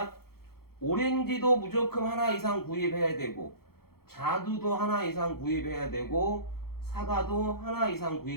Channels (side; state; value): right; late; 0.94 ms